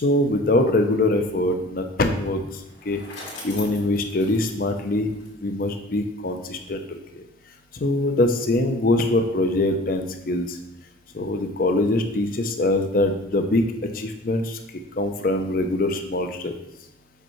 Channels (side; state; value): both; normal; correlation 0.44